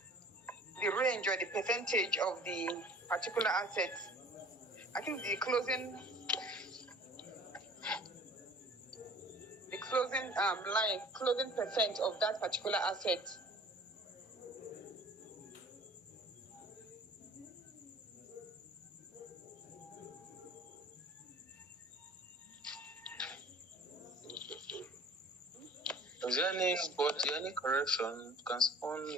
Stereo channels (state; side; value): normal; both; correlation 0.47